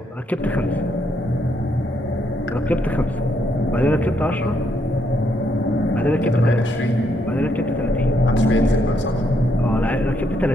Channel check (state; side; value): normal; both; correlation 0.75